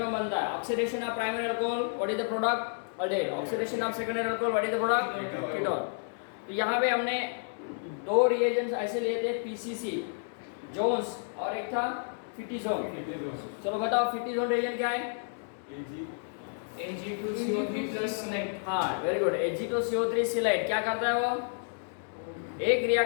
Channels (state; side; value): silent; right; digital silence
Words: बनता है। Oxidation of primary alcohol, what is the product? Aldehyde. Oxidation of secondary alcohol, what is the product? Ketone. तो यहाँ पे हमने दो रिएजेंट्स ऐसे लिए थे, पीसीसी जोन्स और एक था फिटिजोन। चलो बताओ फिटिजोन रिएजेंट क्या है? Ag2CO3 scheelite. हाँ, वेरी गुड। Ag2CO3 सिलाइट क्या करता है वो? एक